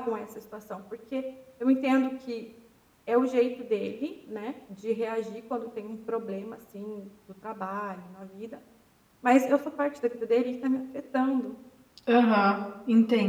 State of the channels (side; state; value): both; identical; correlation 1.00